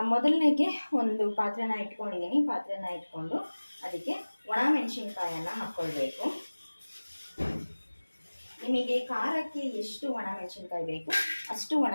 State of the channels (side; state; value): both; inverted; correlation -1.00